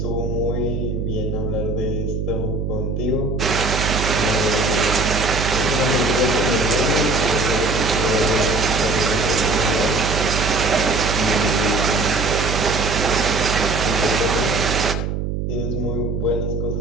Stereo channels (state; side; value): noise; right; hum, 2 dB below the sound